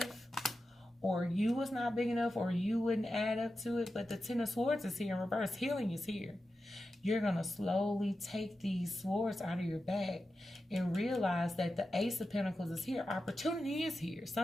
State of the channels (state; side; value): normal; both; correlation 0.91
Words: or you was not big enough, or you wouldn't add up to it. But the Ten of Swords is here in reverse. Healing is here. You're going to slowly take these swords out of your bag and realize that the Ace of Pentacles is here. Opportunity is here.